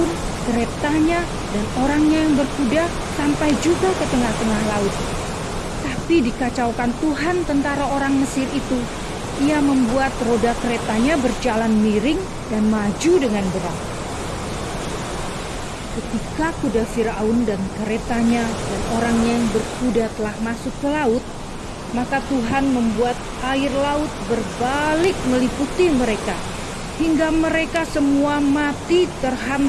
keretanya, dan orangnya yang berkuda sampai juga ke tengah-tengah laut. Tapi dikacaukan Tuhan tentara orang Mesir itu. Ia membuat roda keretanya berjalan miring dan maju dengan berat. Ketika kuda Fir'aun dan keretanya dan orangnya yang berkuda telah masuk ke laut, maka Tuhan membuat air laut berbalik meliputi mereka, hingga mereka semua mati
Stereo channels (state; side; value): identical; both; correlation 1.00